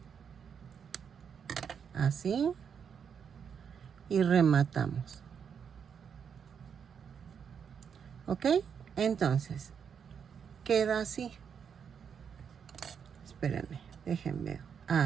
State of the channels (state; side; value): quieter; left; 7.2 dB